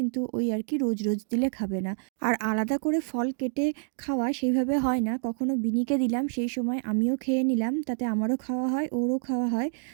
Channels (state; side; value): silent; left; digital silence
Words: ওই আর কি রোজ রোজ দিলে খাবে না। আর আলাদা করে ফল কেটে খাওয়া সেইভাবে হয় না, কখনো বিনিকে দিলাম সেই সময় আমিও খেয়ে নিলাম, তাতে আমারও খাওয়া হয় ওরও খাওয়া হয়।